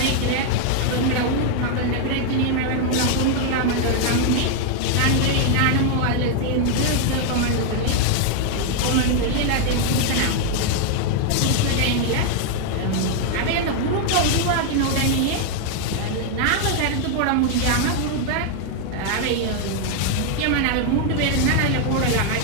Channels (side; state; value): both; different; correlation 0.00